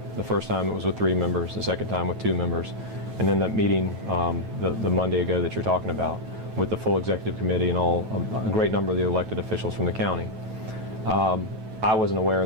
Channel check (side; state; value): left; late; 9.2 ms